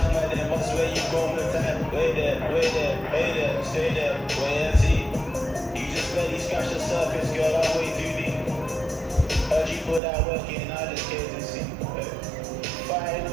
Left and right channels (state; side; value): drops out; left; at 10.0 s